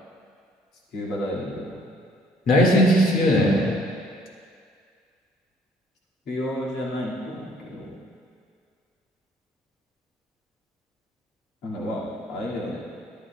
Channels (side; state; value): both; normal; correlation 0.60